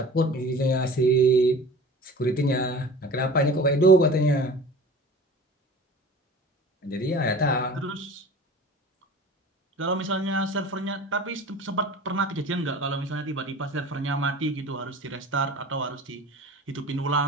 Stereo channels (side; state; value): both; normal; correlation 0.40